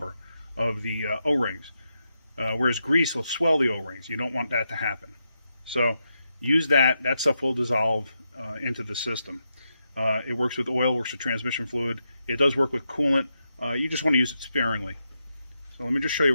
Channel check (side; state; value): both; inverted; correlation -0.85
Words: of the O-rings. Whereas grease will swell the O-rings. You don't want that to happen. So use that. That stuff will dissolve into the system. It works with oil, works with transmission fluid. It does work with coolant. You just want to use it sparingly. So let me just show